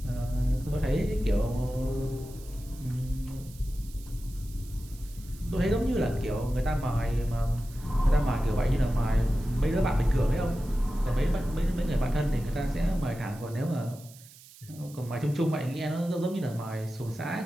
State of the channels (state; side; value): noise; right; hiss, 21 dB below the sound